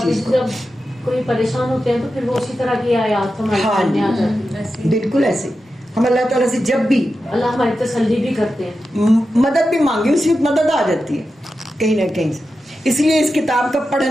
چیز کو. جب کوئی پریشان ہوتے ہیں تو پھر وہ اسی طرح کی آیات ہمارے سامنے آ جاتی ہیں. بالکل ایسے ہم اللہ تعالیٰ سے جب بھی اللہ ہماری تسلی بھی کرتے ہیں, مدد بھی مانگی, اسی وقت مدد آ جاتی ہے کہیں نہ کہیں سے. اس لیے اس کتاب کا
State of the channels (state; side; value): normal; both; correlation 0.91